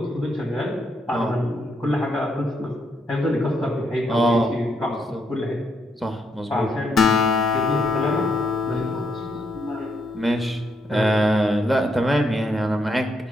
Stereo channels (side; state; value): both; normal; correlation 0.76